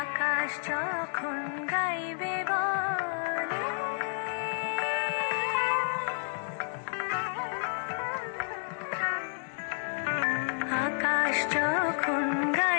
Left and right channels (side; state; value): right; silent; digital silence